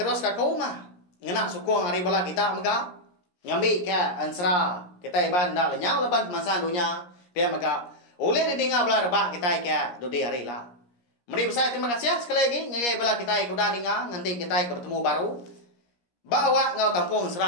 ka kau mah ngena sukong hari bala kita maka ngambi ka ansra kita iban dah lenyau leban masa dunia pia maka ulah ninga bala rebak kita ka dudi hari lah mari besar terima kasih sekali lagi ngai bala kita kuda ninga nanti kita bertemu baru bawa ngau tampung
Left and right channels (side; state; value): right; late; 17 ms